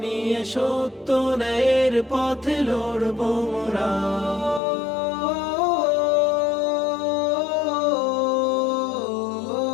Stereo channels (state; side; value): drops out; right; at 4.6 s